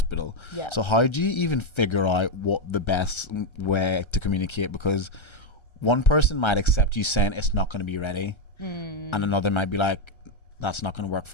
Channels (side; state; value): right; late; 1.3 ms